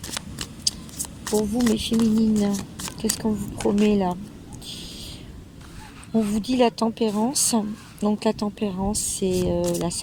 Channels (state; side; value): identical; both; correlation 1.00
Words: pour vous, mes féminines? Qu'est-ce qu'on vous promet là? On vous dit la tempérance. Donc la tempérance, c'est la